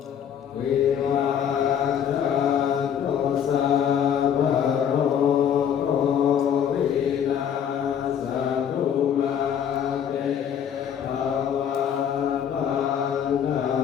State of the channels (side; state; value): right; quieter; 8.7 dB